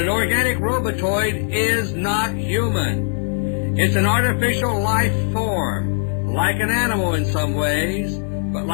organic robotoid is not human. It's an artificial life form, like an animal in some ways, but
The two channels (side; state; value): right; silent; 58 dB below the other